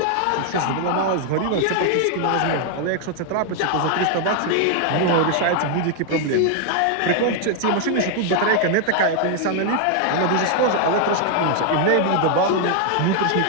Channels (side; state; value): both; different; correlation 0.00